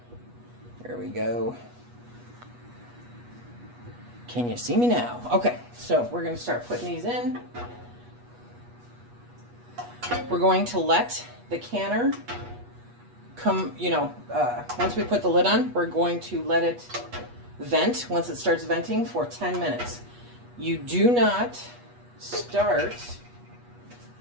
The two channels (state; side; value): late; left; 8.3 ms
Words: There we go. Can you see me now? Okay, so we're going to start putting these in. We're going to let the canner come, you know, once we put the lid on, we're going to let it vent once it starts venting for 10 minutes. You do not start